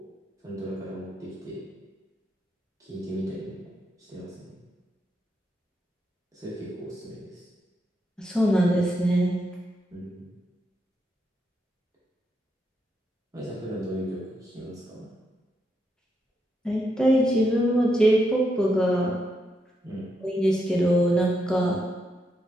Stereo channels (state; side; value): normal; both; correlation 0.81